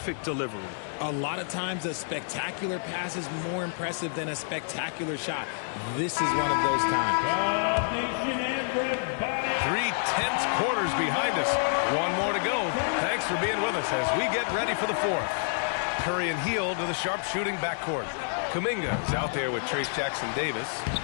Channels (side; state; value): right; silent; digital silence